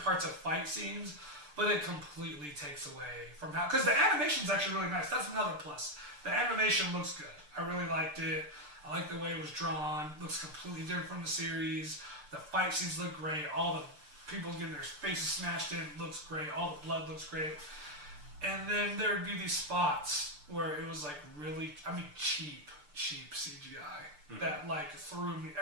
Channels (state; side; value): late; left; 6.7 ms